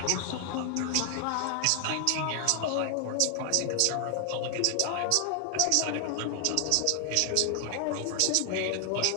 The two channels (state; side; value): different; both; correlation 0.00